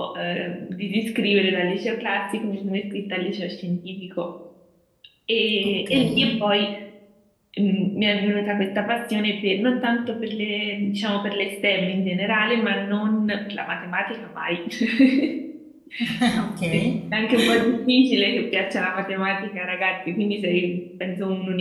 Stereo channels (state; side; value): identical; both; correlation 1.00